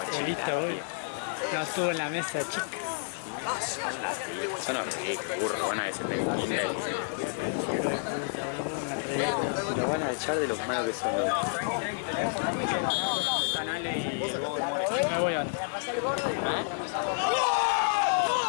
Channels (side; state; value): right; silent; 58 dB below the other